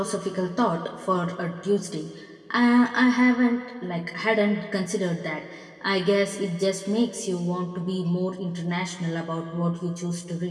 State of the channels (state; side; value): identical; both; correlation 1.00